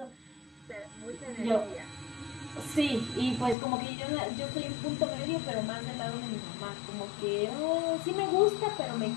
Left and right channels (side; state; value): right; drops out; at 3.6 s